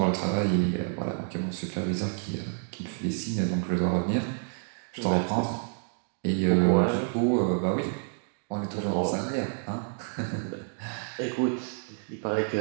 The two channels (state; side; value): silent; left; 59 dB below the other